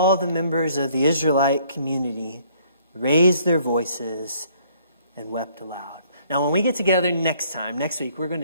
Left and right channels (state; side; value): inverted; both; correlation -0.62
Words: the members of the Israelite community raised their voices and wept aloud. Now, when we get together next week, we're going